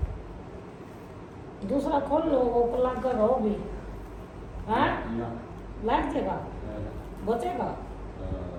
दूसरा खोल लो वो प्लग करो भी हाँ लग जाएगा बचेगा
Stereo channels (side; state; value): both; identical; correlation 1.00